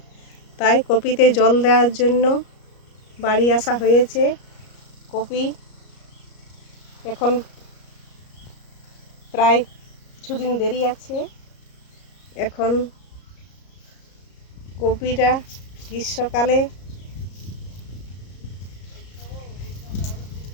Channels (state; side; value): late; right; 34 ms